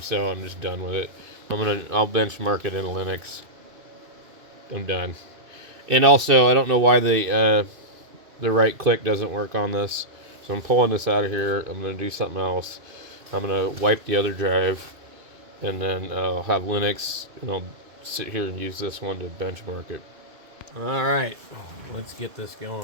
so I'm just done with it. I'll benchmark it in Linux. I'm done. And also, I don't know why the right click doesn't work on this. So I'm pulling this out of here. I'm going to do something else. I'm going to wipe the other drive, and then I'll have Linux, and I'll sit here and use this one to benchmark it. Alright, let's get this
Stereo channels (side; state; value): left; late; 2.5 ms